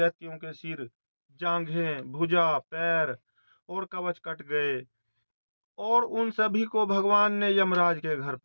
के सिर, जांघें, भुजा, पैर और कवच कट गए और उन सभी को भगवान ने यमराज के घर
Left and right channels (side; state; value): both; inverted; correlation -1.00